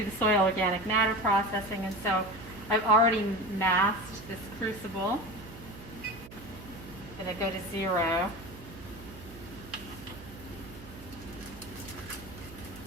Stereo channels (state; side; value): noise; right; hum, 16 dB below the sound